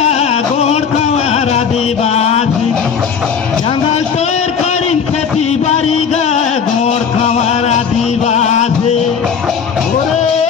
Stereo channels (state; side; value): quieter; right; 6.6 dB